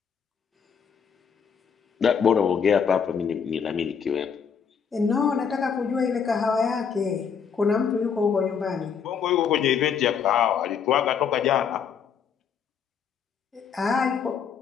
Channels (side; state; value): right; quieter; 7.0 dB